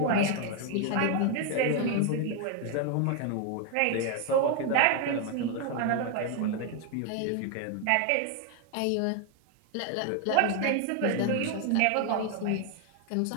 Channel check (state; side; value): different; both; correlation 0.01